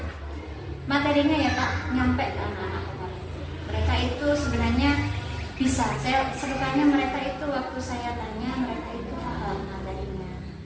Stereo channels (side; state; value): both; identical; correlation 1.00